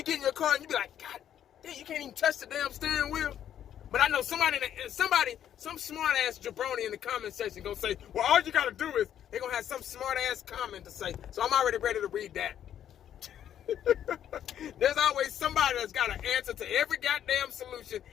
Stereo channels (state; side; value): quieter; right; 10.2 dB